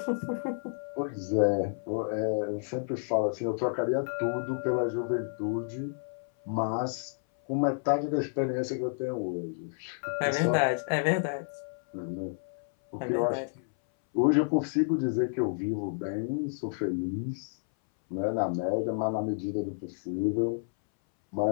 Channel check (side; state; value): right; silent; 58 dB below the other